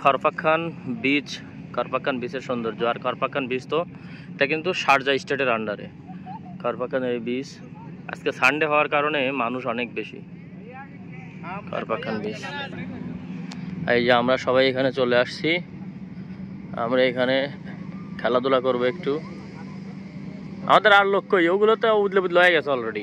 খরফাখান বিচ, খরফাখান বিচের সৌন্দর্য। আর খরফাখান বিচ তো এটা কিন্তু শারজা স্টেটের আন্ডারে খরফাখান এই বিচ। আজকে সানডে হওয়ার কারণে মানুষ অনেক বেশি। খরফাখান বিচ, এই যে আমরা সবাই এখানে চলে আসছি। আমরা এখানে খেলাধুলা করবো একটু। আমাদের আর লোক কই, ওগুলো তো উদলে বুদলে হয়ে গেছে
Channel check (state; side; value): identical; both; correlation 1.00